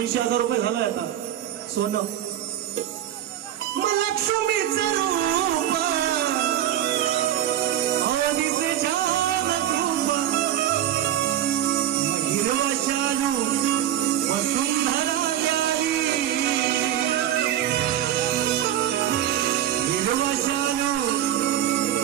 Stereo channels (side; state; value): left; quieter; 11.7 dB